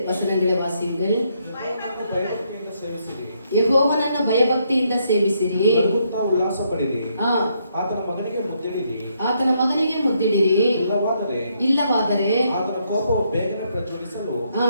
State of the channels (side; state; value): both; inverted; correlation -0.75